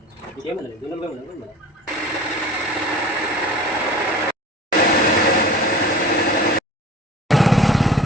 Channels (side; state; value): both; normal; correlation 0.40